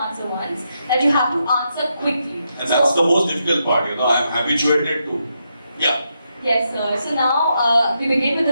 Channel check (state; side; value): inverted; both; correlation -0.82